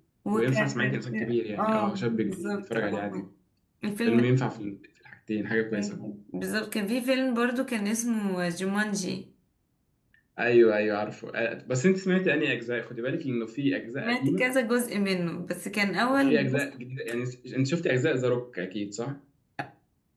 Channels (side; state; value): both; identical; correlation 1.00